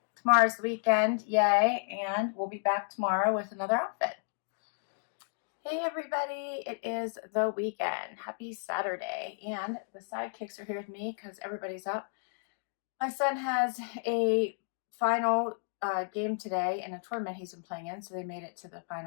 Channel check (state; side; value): silent; right; digital silence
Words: tomorrow's the weekend, yay, and we'll be back tomorrow with another outfit. Hey everybody, it is the weekend. Happy Saturday, and the sidekicks are here with me because everybody's up. My son has a final game today in a tournament he's been playing in, so they made it to the